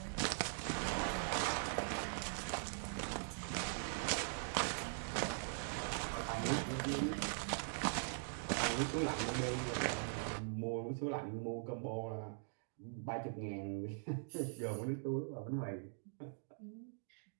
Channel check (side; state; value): left; silent; digital silence